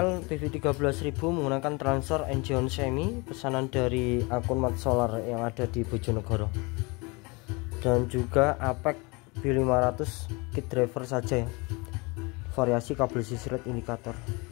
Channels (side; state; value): right; quieter; 27.3 dB